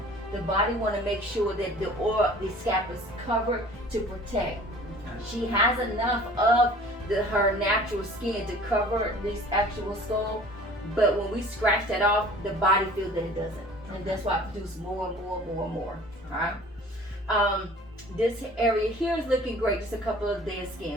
The body want to make sure that the scalp is covered to protect. She has enough of her natural skin to cover this actual skull, but when we scratch that off, the body feels that it doesn't, and that's why it produces more and more and more and more. All right. This area here is looking great. Just a couple of dead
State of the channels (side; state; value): both; normal; correlation 0.47